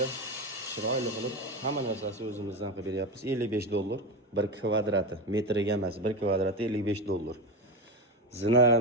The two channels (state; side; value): normal; both; correlation 0.17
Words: chiroyli qilib hamma narsasi o'zimizdan qilib beryapmiz. $55 bir kvadrati, metriga emas, bir kvadrati $55.